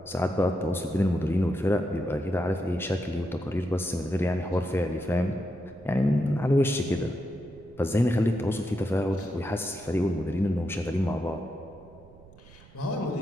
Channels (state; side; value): noise; right; rumble, 24 dB below the sound